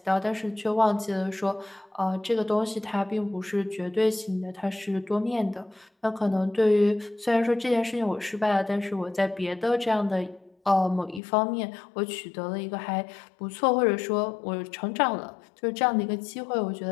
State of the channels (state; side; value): drops out; right; at 11.2 s